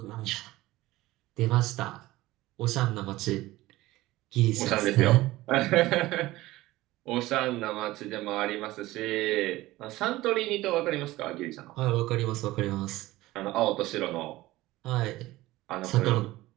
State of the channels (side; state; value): left; quieter; 17.8 dB